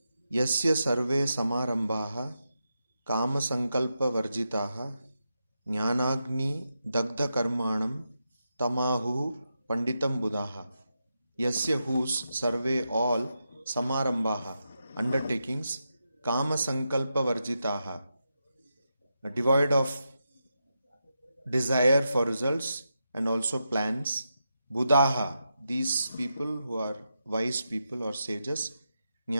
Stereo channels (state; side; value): inverted; both; correlation -0.86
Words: Yasya sarve samarambhaha kama sankalpa varjitaha jnanagni dagdha karmanam tamahu panditam buddhaha. Yasya whose survey all samarambhaha undertakings kama sankalpa varjitaha devoid of desire for results and also plans. Buddhaha, these people who are wise people or sages,